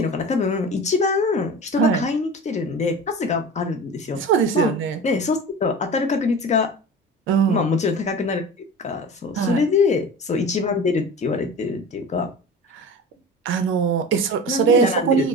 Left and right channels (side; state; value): both; normal; correlation 0.34